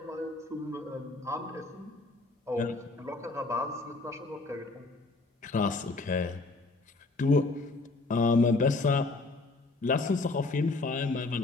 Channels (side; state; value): right; quieter; 3.4 dB